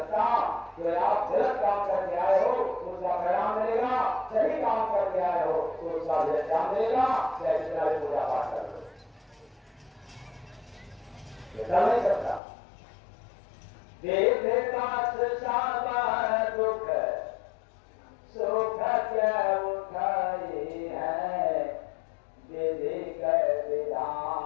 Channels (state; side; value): drops out; right; at 12.4 s